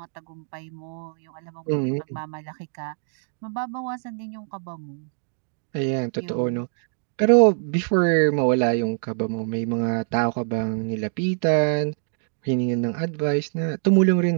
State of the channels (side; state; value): left; silent; digital silence